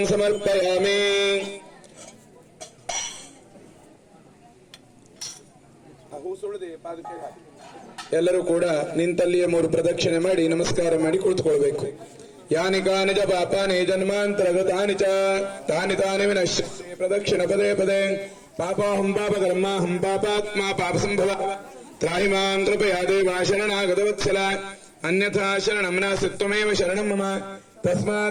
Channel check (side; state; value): both; identical; correlation 1.00